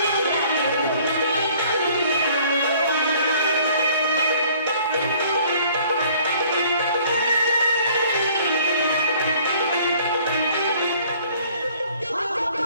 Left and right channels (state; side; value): inverted; both; correlation -0.56